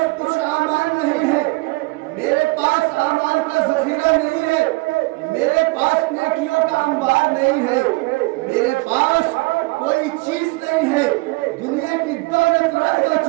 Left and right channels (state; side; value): quieter; left; 24.2 dB